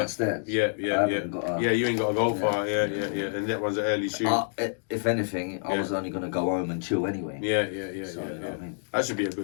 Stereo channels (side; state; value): right; silent; digital silence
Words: Yeah. I haven't got a- Yeah, you ain't got to go Yeah. far. Yeah. And that one's an early shoot. If anything, I Yeah. was only gonna go home and chill anyway. Yeah. So, you know what I mean? That should be a